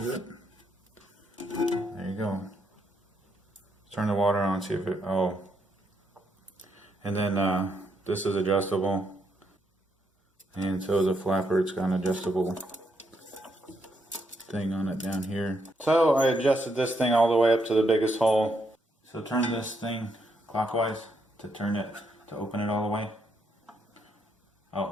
it. There you go. Turn the water on, see if it, oh. And then this is adjustable. And so is a flapper, it's got an adjustable thing on it down here. So I adjusted this thing all the way up to the biggest hole. So turn this thing clockwise to turn it, to open it all the way.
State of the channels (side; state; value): both; normal; correlation 0.77